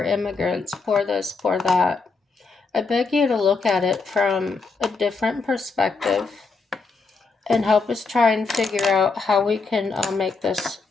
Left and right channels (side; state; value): right; quieter; 4.4 dB